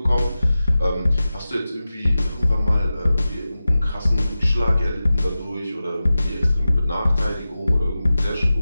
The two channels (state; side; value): inverted; both; correlation -0.94